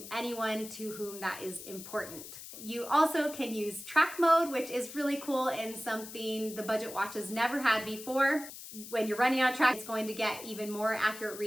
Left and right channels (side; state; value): left; noise; hiss, 13 dB below the sound